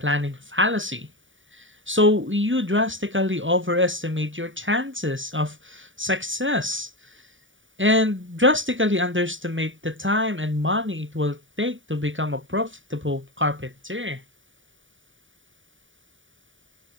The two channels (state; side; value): late; left; 0.56 ms